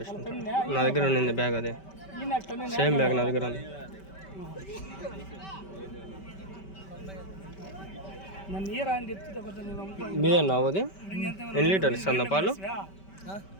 నా దగ్గర ఉండింది బ్యాగ్, అదే సేమ్ బ్యాగ్ నా దగ్గర ఉంది. మీదేనా అది? ఎన్ని లీటర్లు ఇస్తుంది పాలు?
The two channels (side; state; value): right; late; 5.2 ms